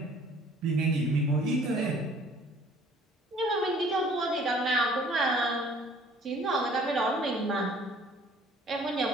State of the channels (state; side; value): normal; both; correlation 0.54